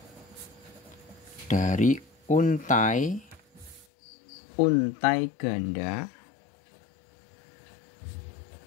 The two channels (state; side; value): drops out; right; at 3.9 s